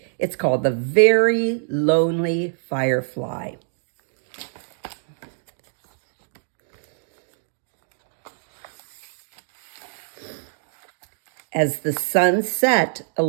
It's called The Very Lonely Firefly. As the sun set, a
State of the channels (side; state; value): left; silent; digital silence